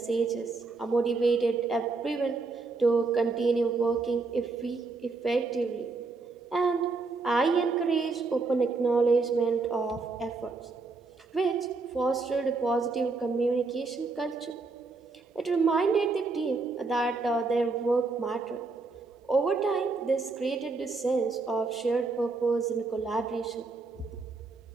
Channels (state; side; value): quieter; left; 3.9 dB